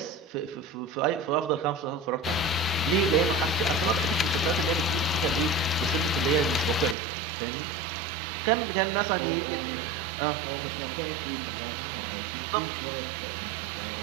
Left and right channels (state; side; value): drops out; left; at 7.0 s